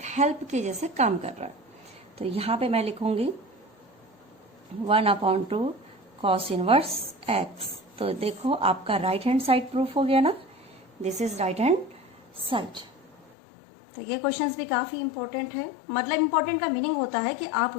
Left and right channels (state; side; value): drops out; right; at 13.3 s